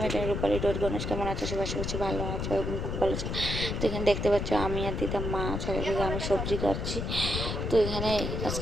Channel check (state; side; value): noise; left; rumble, 2 dB below the sound